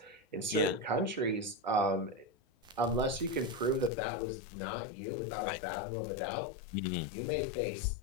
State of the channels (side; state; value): right; drops out; at 3.9 s